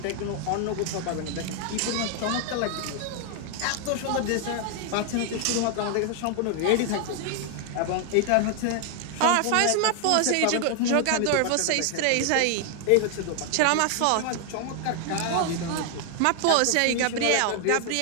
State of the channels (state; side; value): different; both; correlation 0.00